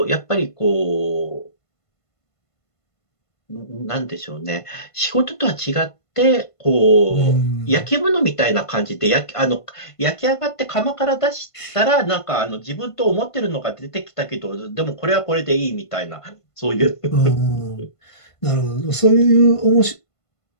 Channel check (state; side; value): late; right; 1.5 ms